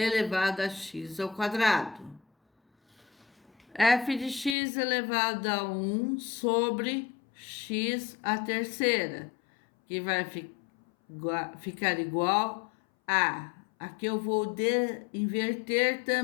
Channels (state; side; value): drops out; right; at 4.5 s